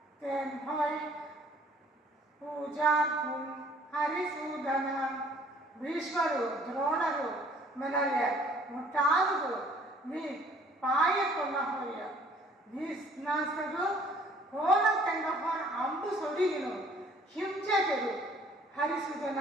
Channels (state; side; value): normal; both; correlation 0.57